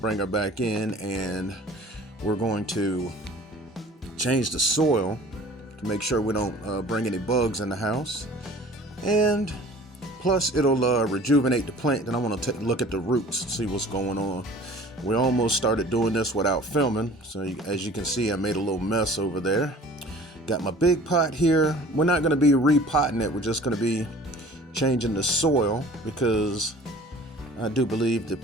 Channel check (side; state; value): both; normal; correlation 0.46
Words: her back in, and we're going to change the soil to make sure we don't bring any bugs in the house. And plus it'll rejuvenate the plant. And I want to look at the roots, see what's going on. We almost started doing this without filming, so as you can see, I made a little mess over there. Got my big pot here. We're not going to be repotting it, we're just going to be changing the soil because I do believe the